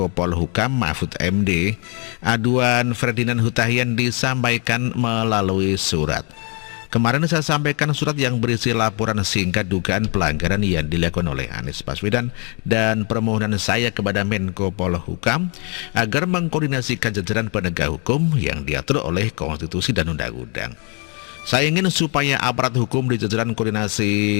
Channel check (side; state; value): right; quieter; 35.6 dB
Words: Polhukam Mahfud MD. Aduan Ferdinand Hutahian disampaikan melalui surat. Kemarin saya sampaikan surat yang berisi laporan singkat dugaan pelanggaran yang dilakukan oleh Anies Baswedan dan permohonan saya kepada Menko Polhukam agar mengkoordinasikan jajaran penegak hukum yang diatur oleh konstitusi dan undang-undang. Saya ingin supaya aparat hukum di jajaran